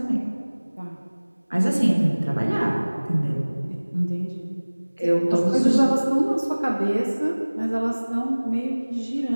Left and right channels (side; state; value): both; inverted; correlation -1.00